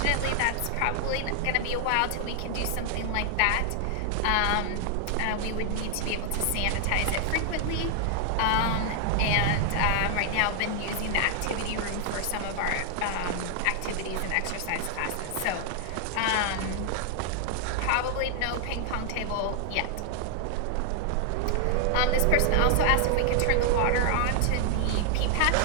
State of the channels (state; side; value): different; both; correlation 0.00